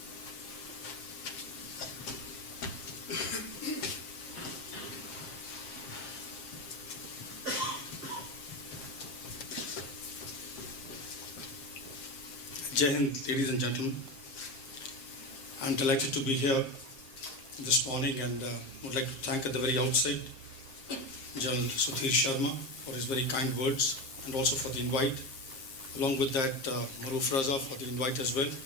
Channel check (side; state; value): right; late; 7.5 ms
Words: Jai Hind, ladies and gentlemen. I'm delighted to be here this morning and would like to thank at the very outset General Sudhir Sharma for his very kind words and also for the invite. Along with that, Maruf Raza for the invite as well.